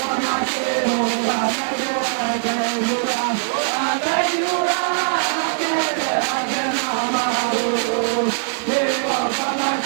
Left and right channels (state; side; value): silent; left; digital silence